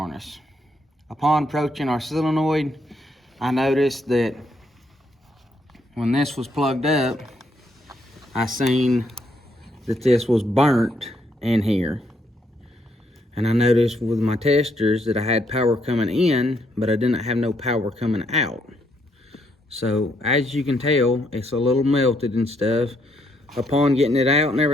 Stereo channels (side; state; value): both; normal; correlation 0.74